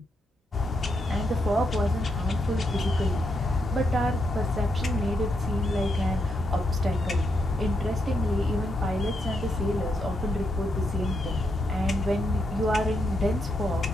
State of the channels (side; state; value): both; normal; correlation 0.80